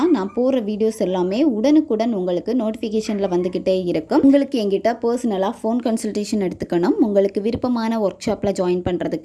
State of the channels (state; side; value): identical; both; correlation 1.00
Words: நான் போடுற வீடியோஸ் எல்லாமே உடனுக்குடன் உங்களுக்கு நோட்டிஃபிகேஷனில் வந்துக்கிட்டே இருக்கும். உங்களுக்கு எங்கிட்ட பர்சனலாக ஃபோன் கன்சல்டேஷன் எடுத்துக்கணும், உங்களுக்கு விருப்பமான ஒர்க் ஷாப்பில் ஜாயின்